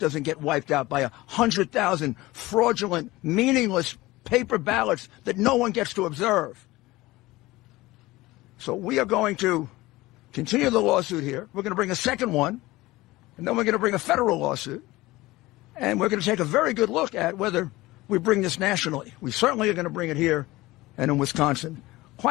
get wiped out by 100,000 fraudulent, meaningless paper ballots that no one gets to observe. So we are going to continue the lawsuit here. We're going to bring a second one, and then we're going to bring a federal lawsuit. And we're going to take a very good look at whether we bring this nationally. We certainly are going to bring it here and in Wisconsin.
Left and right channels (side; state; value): right; quieter; 19.3 dB